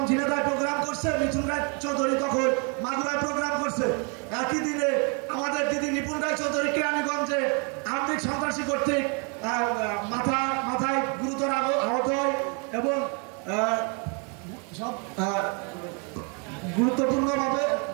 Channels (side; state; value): left; quieter; 36.3 dB